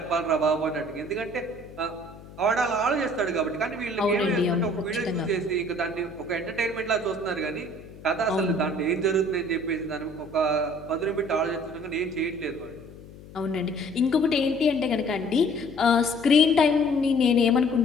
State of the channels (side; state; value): left; noise; hum, 18 dB below the sound